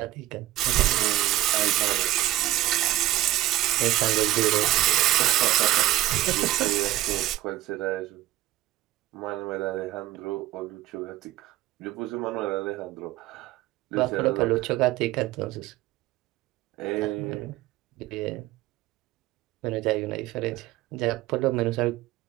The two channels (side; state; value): left; quieter; 15.6 dB